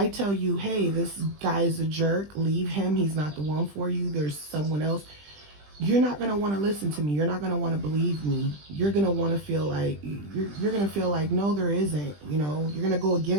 tell you, hey, this guy is a jerk, leave him, he's not the one for you, there's someone else, you're not going to want to listen to me. You're not going to want to believe me. You're going to want to feel like, you're going to feel like, no, there isn't, you're going to go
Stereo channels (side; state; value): left; late; 20 ms